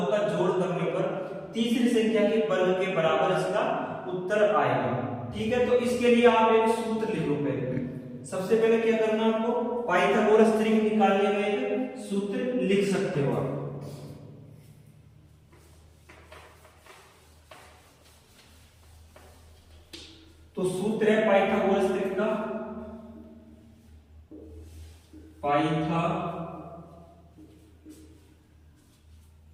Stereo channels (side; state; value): both; identical; correlation 1.00